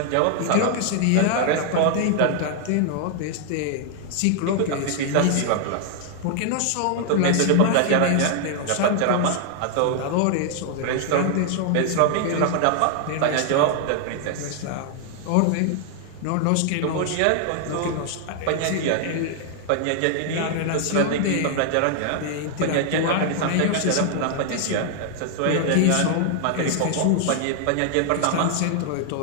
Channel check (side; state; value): both; different; correlation 0.00